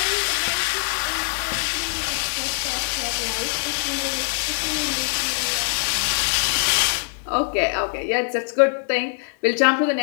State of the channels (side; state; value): right; silent; 64 dB below the other